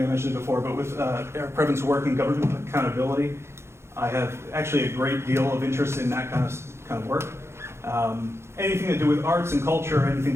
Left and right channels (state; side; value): late; left; 0.13 ms